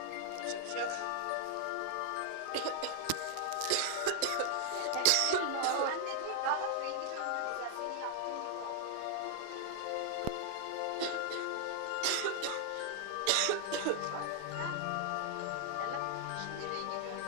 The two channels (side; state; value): both; different; correlation 0.00